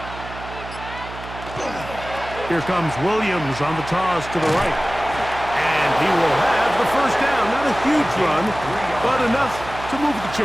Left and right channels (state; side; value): noise; right; hum, 13 dB below the sound